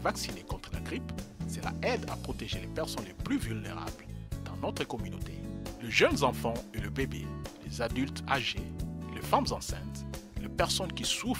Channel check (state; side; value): identical; both; correlation 1.00